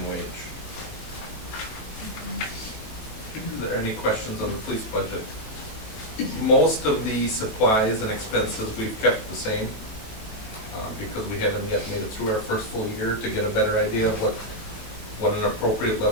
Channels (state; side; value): late; right; 18 ms